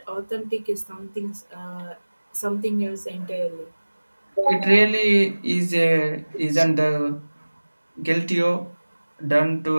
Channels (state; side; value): inverted; both; correlation -1.00